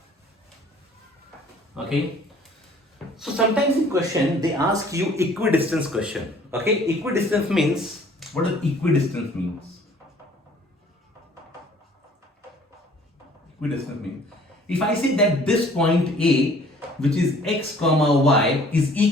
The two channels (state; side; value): normal; both; correlation 0.55